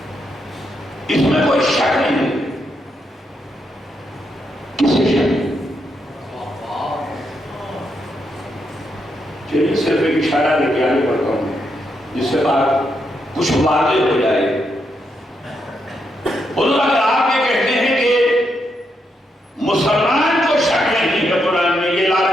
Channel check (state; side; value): normal; both; correlation 0.80